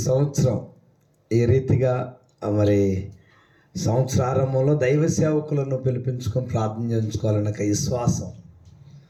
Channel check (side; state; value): both; identical; correlation 1.00